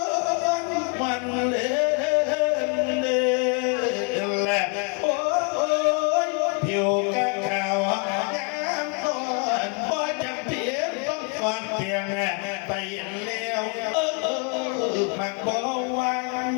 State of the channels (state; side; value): quieter; right; 34.9 dB